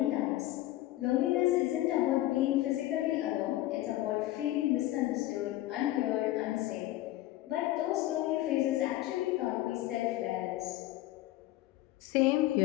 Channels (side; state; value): right; quieter; 15.8 dB